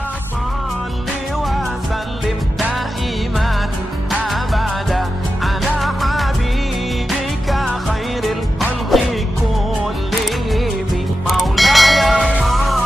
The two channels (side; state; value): both; normal; correlation 0.91